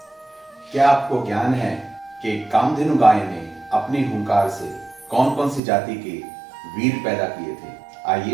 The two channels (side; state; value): left; drops out; at 5.6 s